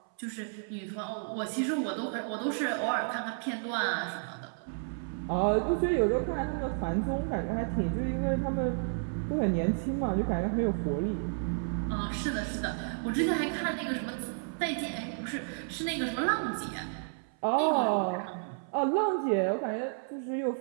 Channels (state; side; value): silent; left; 57 dB below the other